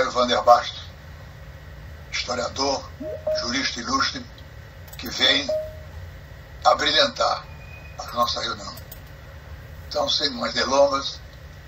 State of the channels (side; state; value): both; identical; correlation 1.00